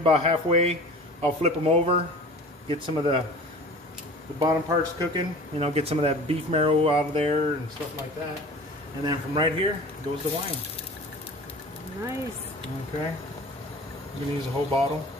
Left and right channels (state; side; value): normal; both; correlation 0.41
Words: halfway, I'll flip them over, get some of the bottom parts cooking, you know, get some of that beef marrow out of there and stuff like that. And then from right here goes the wine. Nice. Okay. I'm gonna use a whole bottle,